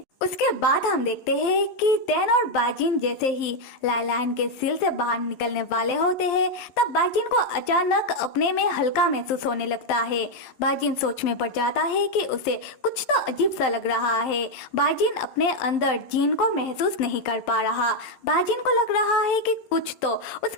उसके बाद हम देखते हैं कि टैन और बाजिन जैसे ही लाइलाइन के सिल से बाहर निकलने वाले होते हैं तब बाजिन को अचानक अपने में हल्का महसूस होने लगता है। बाजिन सोच में पड़ जाता है कि उसे कुछ तो अजीब सा लग रहा है। बाजिन अपने अंदर जीन को महसूस नहीं कर पा रहा। बाजिन को लग रहा है कि कुछ तो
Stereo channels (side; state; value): right; late; 11 ms